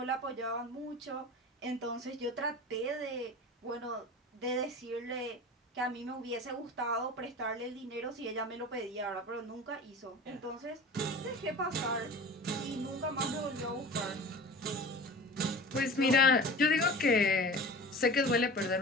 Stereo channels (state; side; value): normal; both; correlation 0.36